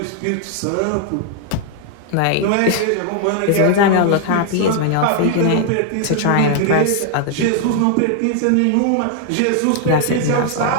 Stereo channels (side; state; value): both; different; correlation 0.00